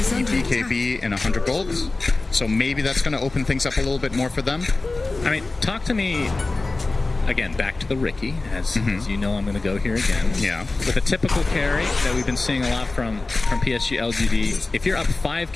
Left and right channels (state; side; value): quieter; right; 3.3 dB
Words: in 100 golds, so maybe that's going to open things up a little bit more for them. I mean, talk to me, again, back to the Ricky, as you know I'm going to go here again. Yeah. With a typical carry that we've been seeing a lot from PSG LGD, if you're up